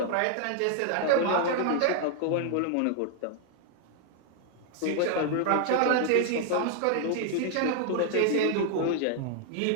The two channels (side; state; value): both; different; correlation 0.00